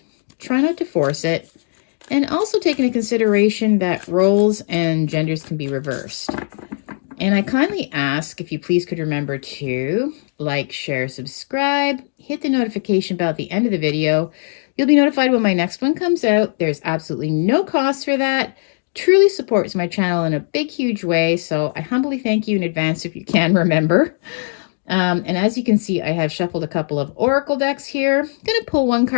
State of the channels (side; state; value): right; silent; digital silence